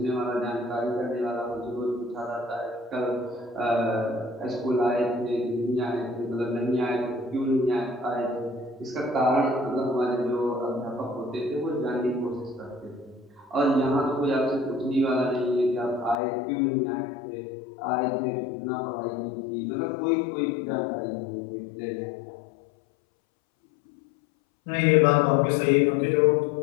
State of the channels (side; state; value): right; drops out; at 16.2 s